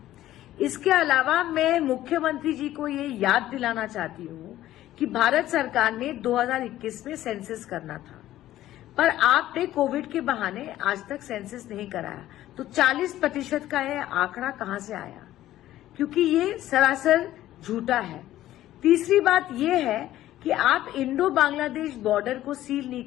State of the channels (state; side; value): quieter; right; 14.0 dB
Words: इसके अलावा मैं मुख्यमंत्री जी को ये याद दिलाना चाहती हूं कि भारत सरकार ने 2021 में सेंसस करना था, पर आपने कोविड के बहाने आज तक सेंसस नहीं कराया, तो 40% का यह आंकड़ा कहां से आया? क्योंकि ये सरासर झूठा है। तीसरी बात यह है कि आप इंडो बांग्लादेश बॉर्डर को सील नहीं